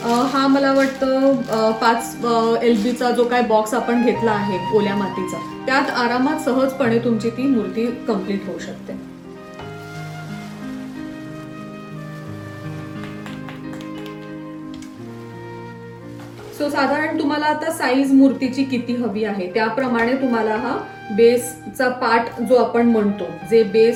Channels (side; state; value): both; identical; correlation 1.00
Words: हा मला वाटतं 5 LBचा जो काय बॉक्स आपण घेतला आहे ओल्या मातीचा, त्यात आरामात सहजपणे तुमची ती मूर्ती कम्प्लीट होऊ शकते. सो साधारण तुम्हाला आता साईज मूर्तीची किती हवी आहे त्याप्रमाणे तुम्हाला हा बेसचा पार्ट जो आपण म्हणतो, जे